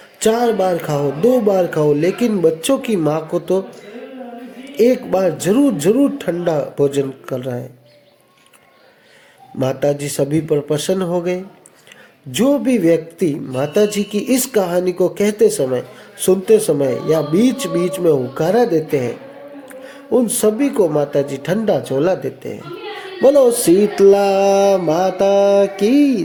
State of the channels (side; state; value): both; identical; correlation 1.00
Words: 4 बार खाओ, 2 बार खाओ, लेकिन बच्चों की माँ को तो 1 बार जरूर जरूर ठंडा भोजन कर रहा है। माताजी सभी पर प्रसन्न हो गए। जो भी व्यक्ति माताजी की इस कहानी को कहते समय, सुनते समय या बीच बीच में हुकारा देते हैं, उन सभी को माताजी ठंडा झोला देते हैं। बोलो शीतला माता की